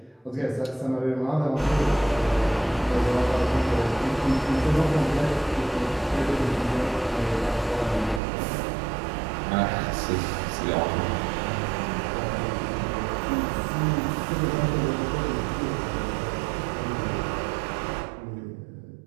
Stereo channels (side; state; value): left; drops out; at 8.2 s